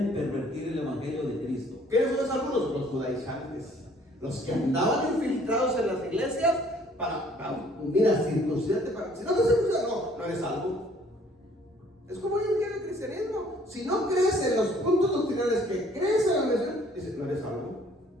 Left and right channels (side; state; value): both; normal; correlation 0.58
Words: pervertir el evangelio de Cristo. ¿Quiénes son esos algunos? Los judaizantes. Los que andaban infiltrados en las iglesias mira, circuncidarte para. Si no te circuncidas, no eres salvo. Es como hoy en día el cristianismo. Si no crees en los puntos doctrinales que crees en la misión, dices, no eres salvo.